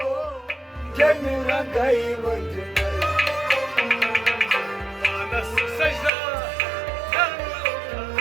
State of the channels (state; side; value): drops out; left; at 6.1 s